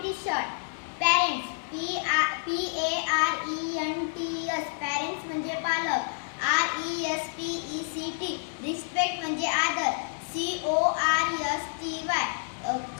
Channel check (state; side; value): silent; right; digital silence